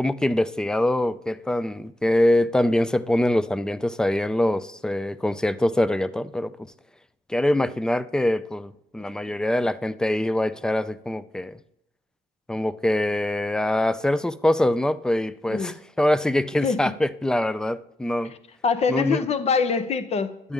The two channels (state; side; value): normal; both; correlation 0.89